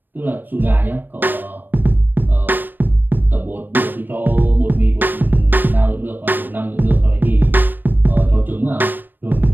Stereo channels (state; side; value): late; left; 0.093 ms